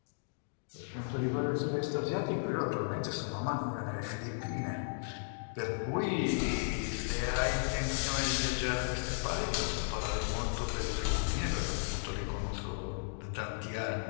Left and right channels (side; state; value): right; silent; digital silence